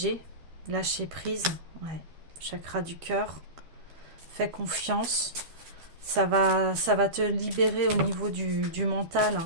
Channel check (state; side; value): late; left; 12 ms